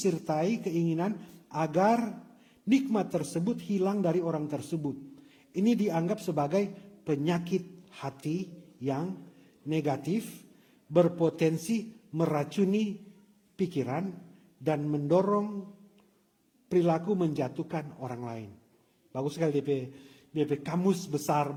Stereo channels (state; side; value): identical; both; correlation 1.00